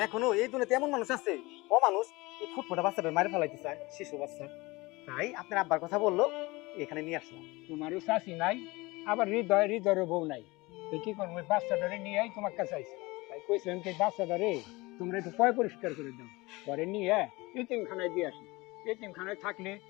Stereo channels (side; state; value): right; quieter; 22.7 dB